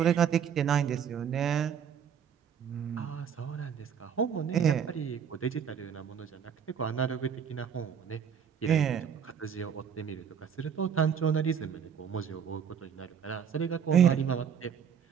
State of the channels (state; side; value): quieter; left; 7.8 dB